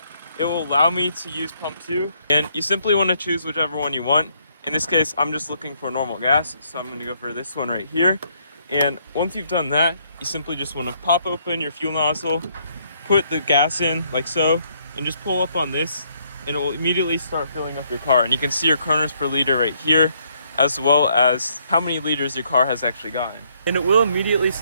it will allow me to use pump 2. And you simply want to choose whichever one you want. In this case, I'm just looking for normal gas, so I'm going to go for this one right here. And once you've done that, you simply just want to pop open your fuel nozzle, put the gas in like so, and just pull up on this, and it will immediately start filling up your car. And you can see your kernels per liter right here, as well as how many liters your car has actually gotten. And it will immediately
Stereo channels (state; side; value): inverted; both; correlation -0.70